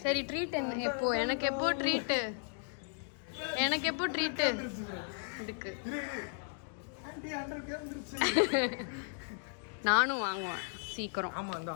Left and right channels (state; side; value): silent; right; 54 dB below the other